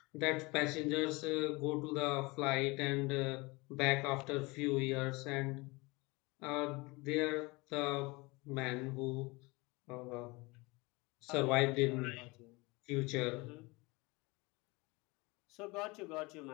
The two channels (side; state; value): right; quieter; 24.7 dB